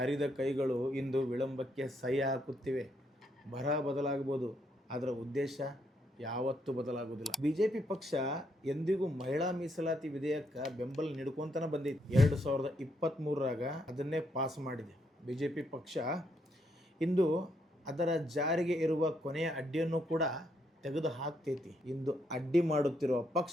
ಕೈಗಳು ಇಂದು ವಿಳಂಬಕ್ಕೆ ಸಹಿ ಹಾಕುತ್ತಿವೆ. ಬರಹ ಬದಲಾಗಬಹುದು, ಅದರ ಉದ್ದೇಶ ಯಾವತ್ತೂ ಬದಲಾಗುವುದಿಲ್ಲ. BJP ಪಕ್ಷ ಎಂದಿಗೂ ಮಹಿಳಾ ಮೀಸಲಾತಿ ವಿಧೇಯಕ ಬೆಂಬಲ ನೀಡ್ಕೊಂತನ ಬಂದಿದೆ. 2023ರಾಗ ಅದನ್ನೇ ಪಾಸ್ ಮಾಡಿದೆ. BJP ಪಕ್ಷ ಇಂದು ಅದರ ಜಾರಿಗೆ ಇರುವ ಕೊನೆಯ ಅಡ್ಡಿಯನ್ನು ಕೂಡ ತೆಗೆದು ಹಾಕ್ತೈತಿ. ಇಂದು ಅಡ್ಡಿ ಮಾಡುತ್ತಿರುವ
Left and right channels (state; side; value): normal; both; correlation 0.75